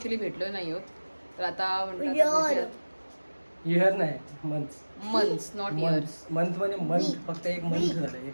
भेटलो नाही आहोत, तर आता म्हणतात इयर नाही, मंथ्स नॉट इयर्स. मंथ म्हणजे मंथ, फक्त एक मंथ झालं.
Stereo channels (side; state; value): both; inverted; correlation -1.00